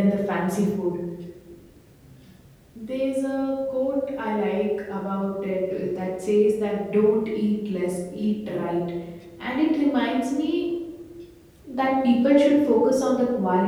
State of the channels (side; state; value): both; identical; correlation 1.00